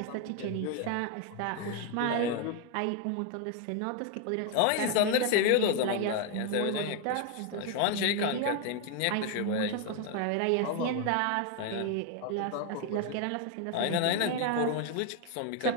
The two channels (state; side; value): different; both; correlation 0.01